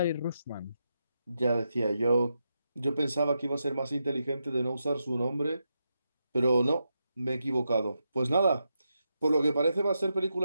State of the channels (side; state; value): both; inverted; correlation -0.86